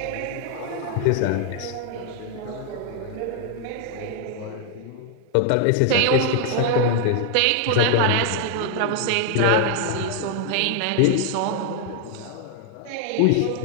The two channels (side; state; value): both; different; correlation 0.00